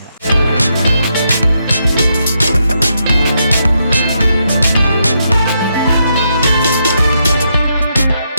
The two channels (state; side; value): inverted; both; correlation -0.80